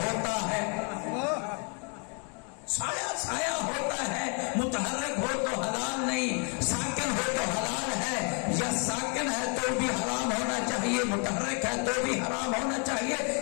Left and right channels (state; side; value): quieter; right; 37.7 dB